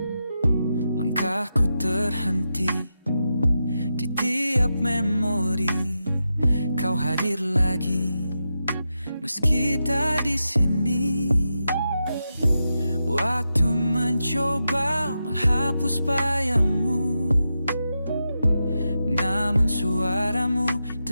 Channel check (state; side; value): inverted; both; correlation -0.88